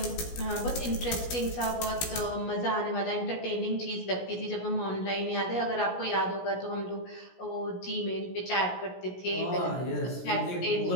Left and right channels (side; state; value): right; late; 17 ms